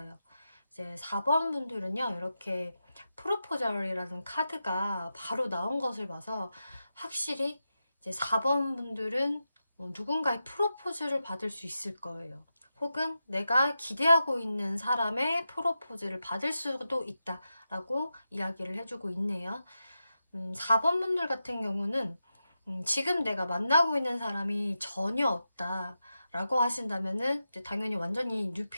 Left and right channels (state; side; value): inverted; both; correlation -0.90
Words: 이제 4번 분들은요, 이렇게 프로포절이라는 카드가 바로 나온 것을 봐서 확실히 이제 4번 분들은 누군가의 프로포즈를 받을 수 있을 거예요. 혹은 내가 기대하고 있는 사람의 프로포즈를 받을 수도 있다라고 이야기를 해주고 있네요. 4번 분들 같은 경우는 지금 내가 만나고 있는 사람이 전혀 없다라고 하신다면은 이제 당연히 완전히